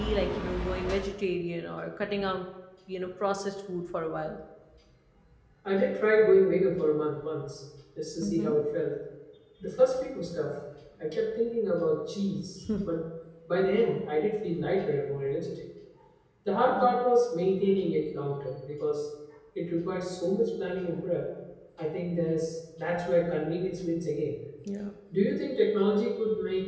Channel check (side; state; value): both; identical; correlation 1.00